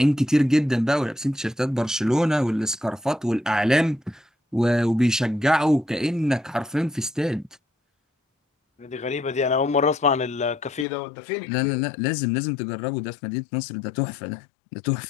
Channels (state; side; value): drops out; right; at 10.9 s